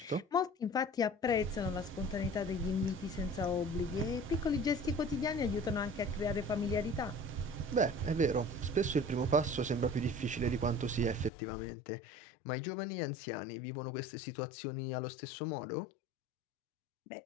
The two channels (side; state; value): right; drops out; at 11.3 s